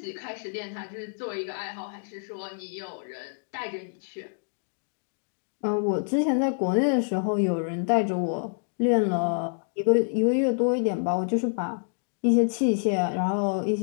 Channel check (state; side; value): silent; right; digital silence